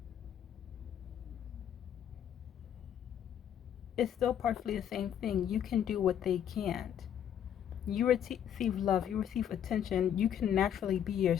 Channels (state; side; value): quieter; right; 9.6 dB